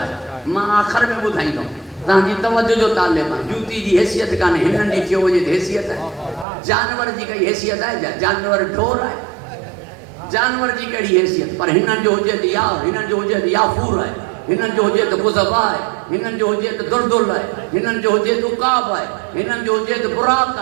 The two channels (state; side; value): drops out; left; at 6.5 s